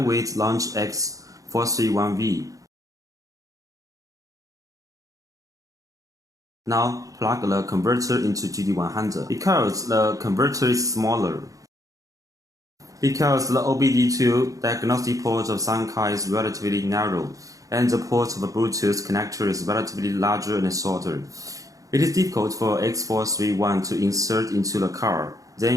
with launch x431v. Now plug the converter into GD100 because the converter is smaller. Because the OBD2 diagnostic port of some car is relatively narrow and the port of a Bluetooth connector is relatively larger and shorter. It is difficult for x431 to insert into the car.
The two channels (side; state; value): left; late; 0.17 ms